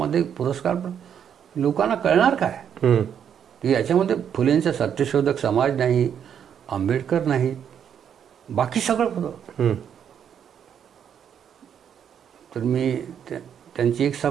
पुरस्कार लोकांना कळणार काय की याच्यामध्ये फुलेंचा सत्यशोधक समाज नाही, आंबेडकर नाही, बाकी सगळं होतं. तर मी त्यांची एक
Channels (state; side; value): quieter; left; 8.5 dB